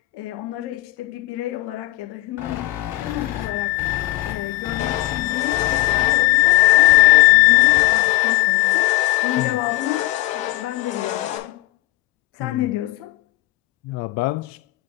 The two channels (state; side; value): quieter; right; 18.5 dB